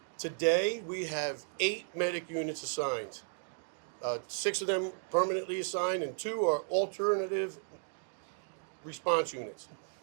Today, we have 8 medic units assigned. 6 of them permanently assigned, and 2 are alternative response units.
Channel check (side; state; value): left; silent; digital silence